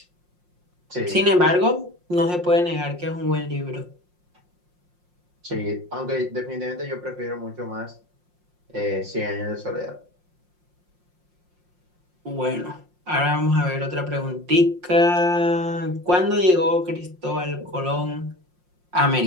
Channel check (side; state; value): left; late; 5.6 ms